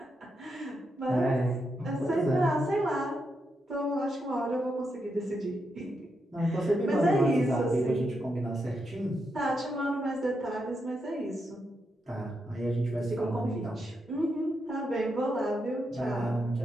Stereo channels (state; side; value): normal; both; correlation 0.83